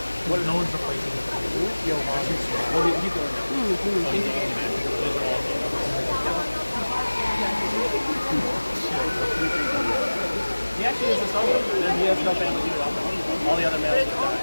What? No one's replacing him. Johan. Well, he's going now. He actually is a solo. He has no family either. All the other males have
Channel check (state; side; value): inverted; both; correlation -1.00